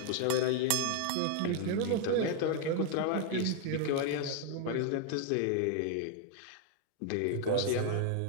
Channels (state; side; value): different; both; correlation 0.01